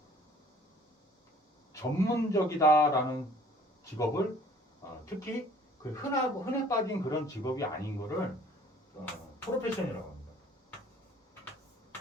전문적이다라는 직업을 특히 그 흔해 빠진 그런 직업이 아닌 거를 프로페션이라고 합니다.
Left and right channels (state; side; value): normal; both; correlation 0.53